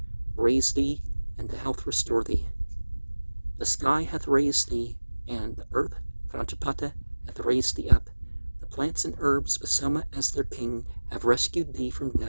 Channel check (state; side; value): inverted; both; correlation -1.00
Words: raise thee, and to health restore thee. The sky hath raised thee, and the earth, Prajapata, hath raised thee up. The plants and herbs, with Soma as their king, have rescued thee from